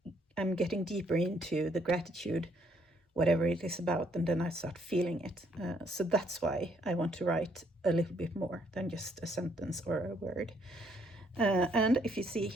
I'm getting deeper into the gratitude, whatever it is about, and then I start feeling it. So that's why I want to write a little bit more than just a sentence or a word. And if you see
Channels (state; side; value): normal; both; correlation 0.69